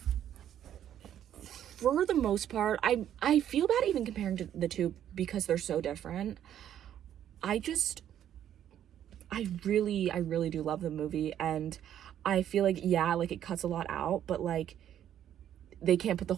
for the most part, I feel bad even comparing to the two because they're so different. I really do love the movie, and I feel like, yeah, like, it cuts a lot out, but, like, they can't put the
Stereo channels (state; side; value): quieter; left; 10.6 dB